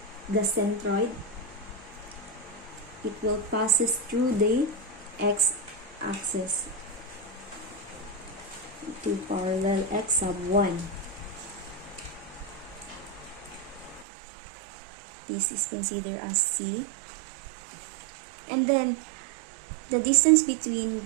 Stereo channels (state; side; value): drops out; left; at 14.1 s